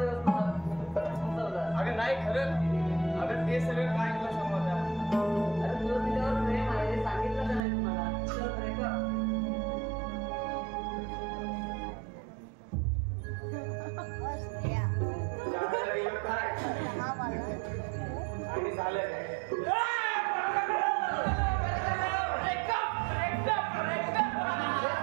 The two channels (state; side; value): drops out; left; at 7.6 s